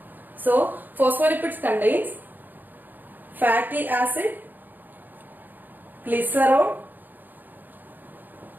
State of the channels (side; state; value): left; late; 0.088 ms